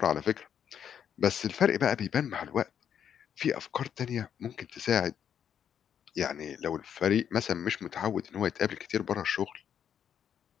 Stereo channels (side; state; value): right; quieter; 8.7 dB